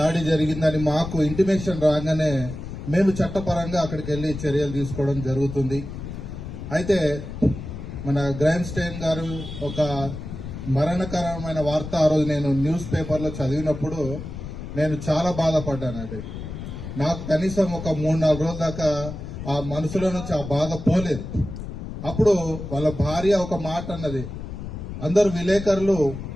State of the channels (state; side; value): noise; left; rumble, 9 dB below the sound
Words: జరిగిందని మాకు ఇంటిమేషన్ రాగానే మేము చట్టపరంగా అక్కడికి వెళ్లి చర్యలు తీసుకోవడం జరుగుతుంది. అయితే మన గ్రాండ్ స్టైన్ గారు ఒక మరణకరమైన వార్త ఆ రోజు నేను న్యూస్ పేపర్లో చదివినప్పుడు నేను చాలా బాధపడ్డానండి. నాకు కనీసం ఒక 3-4 రోజుల దాకా ఆ మనసులో నుంచి ఆ బాధ పోలేదు. అప్పుడు వాళ్ళ భార్య ఒక మాట అన్నది. అందరు విలేకరులు